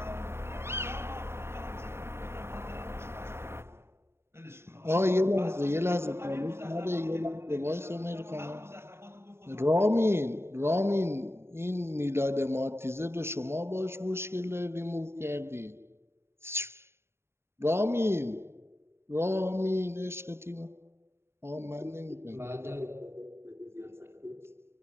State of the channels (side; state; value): left; late; 0.12 ms